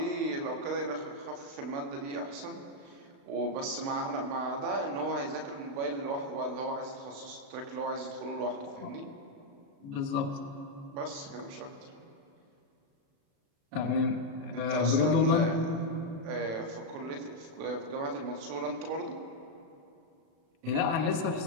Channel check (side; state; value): left; late; 36 ms